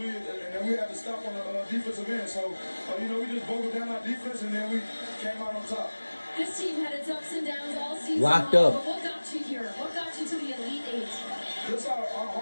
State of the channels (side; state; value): both; inverted; correlation -1.00